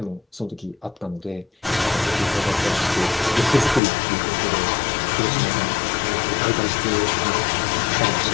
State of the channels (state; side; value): drops out; right; at 3.8 s